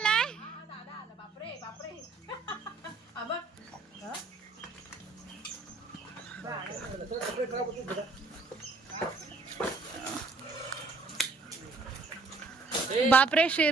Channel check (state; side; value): quieter; left; 3.7 dB